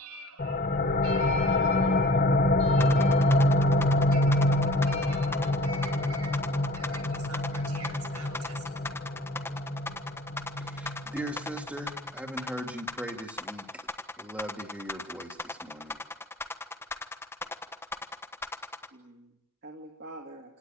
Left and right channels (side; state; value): both; normal; correlation 0.47